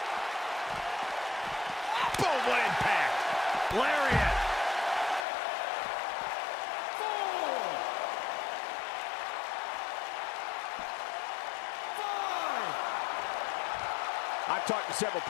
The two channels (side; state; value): right; drops out; at 5.2 s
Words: Boom, what impact! Lariat. I've talked to several